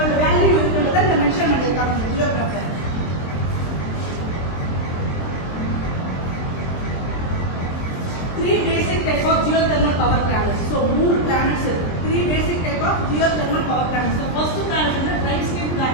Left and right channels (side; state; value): right; late; 23 ms